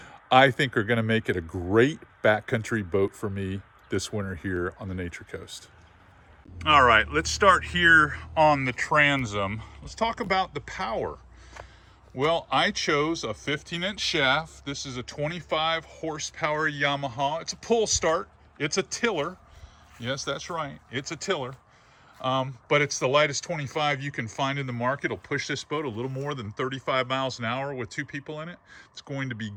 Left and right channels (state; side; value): identical; both; correlation 1.00